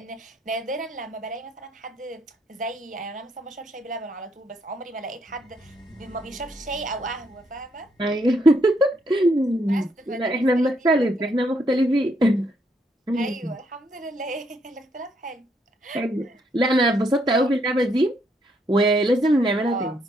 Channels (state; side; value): normal; both; correlation 0.74